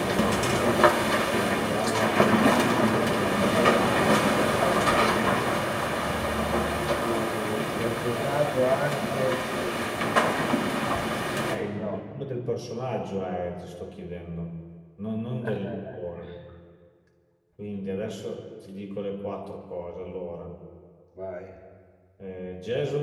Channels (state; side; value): identical; both; correlation 1.00